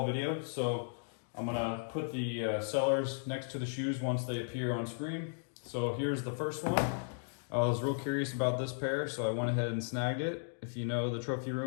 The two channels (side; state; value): right; silent; digital silence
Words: video. So I'm gonna put the sellers next to the shoes once they appear on screen. So here's the first one. I was real curious about this pair, so I went ahead and snagged it. If you know the trophy